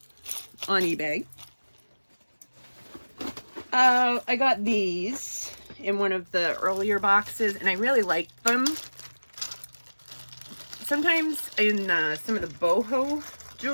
on eBay. I got these in one of the earlier boxes, and I really liked them. Sometimes in some of the boho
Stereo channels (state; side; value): inverted; both; correlation -1.00